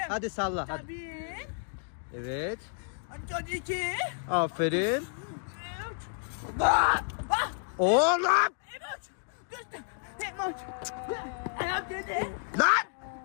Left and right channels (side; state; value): right; silent; digital silence